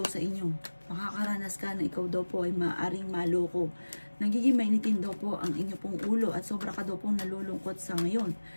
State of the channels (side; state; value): both; inverted; correlation -1.00